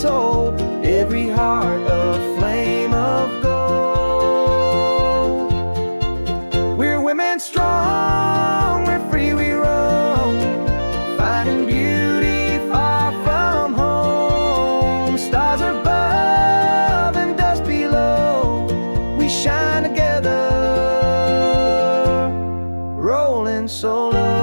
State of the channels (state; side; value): inverted; both; correlation -1.00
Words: every heart a flame of gold. We're women strong, we're free, we roam, finding beauty far from home. Stars above and dust below, we shine together, rolling solo.